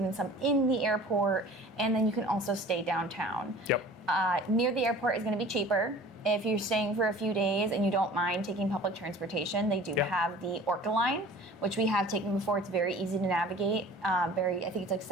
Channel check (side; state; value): both; normal; correlation 0.44